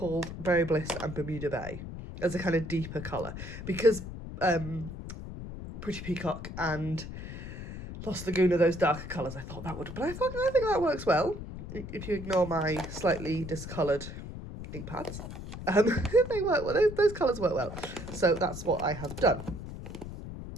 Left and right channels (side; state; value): left; noise; rumble, 9 dB below the sound